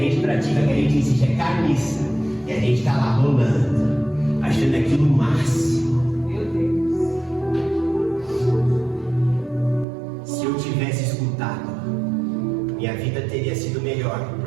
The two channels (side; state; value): left; drops out; at 9.9 s